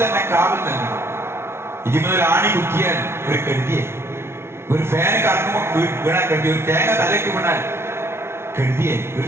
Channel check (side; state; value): left; late; 0.12 ms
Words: തന്നെ കാവൽ നൽകണം. ഇതിനൊരു ആണി കുത്തിയാൽ ഒരു കെടുതിയെ, ഒരു ഫാൻ കറങ്ങുമ്പോൾ വീണാൽ കെടുതി, ഒരു തേങ്ങ തലയ്ക്ക് വീണാൽ കെടുതിയെ, ഒരു